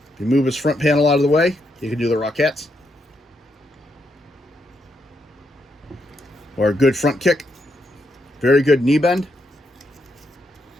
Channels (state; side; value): normal; both; correlation 0.79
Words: you move his front panel out of the way, you can do the Rockettes. Or a good front kick. Very good knee bend.